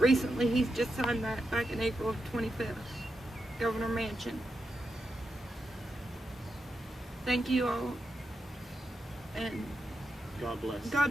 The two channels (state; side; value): normal; both; correlation 0.87